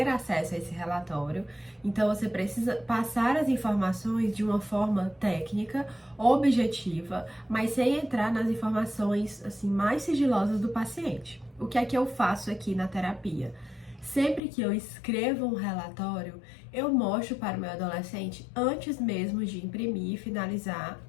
acesso a esse relatório. Então, você precisa passar as informações de uma forma técnica, objetiva, mas sem entrar nas informações assim mais sigilosas do paciente. O que é que eu faço aqui na terapia? Sempre que eu escrevo um relatório, eu mostro para o meu adolescente antes mesmo de imprimir, finalizar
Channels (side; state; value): right; drops out; at 14.4 s